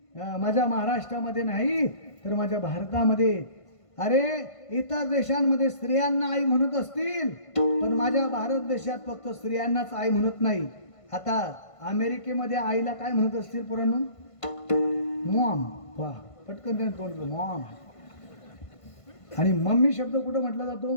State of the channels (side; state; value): right; late; 1.5 ms